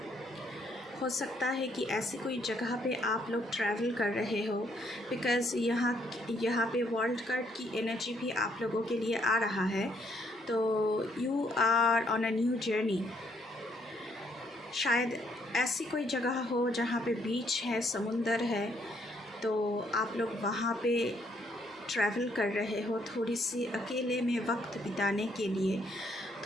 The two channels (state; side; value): normal; both; correlation 0.70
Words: सकता है कि ऐसी कोई जगह पे आप लोग ट्रैवल कर रहे हो, बिकॉज़ यहाँ पे वर्ल्ड कार्ड की एनर्जी भी आप लोगों के लिए आ रहा है। तो you are on a new journey. शायद ऐसी कोई जगह हो जहाँ पे बीच है, समुंदर है, तो आप लोग वहाँ पे ट्रैवल कर रहे हो थोड़ी सी अकेले में वक्त बिताने के लिए,